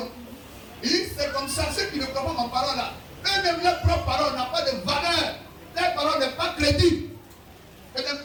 Il dit, c'est comme ça, ceux qui ne croient pas ma parole là. Eux-mêmes, leur propre parole n'a pas de valeur. Leur parole n'est pas crédible. C'est des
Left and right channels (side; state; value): both; identical; correlation 1.00